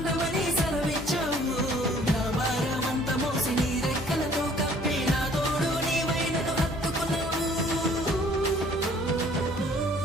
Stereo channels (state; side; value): noise; left; hum, 13 dB below the sound